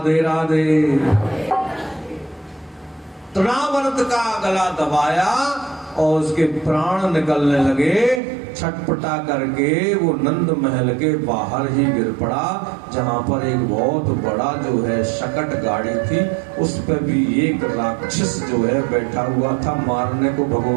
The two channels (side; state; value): left; drops out; at 8.2 s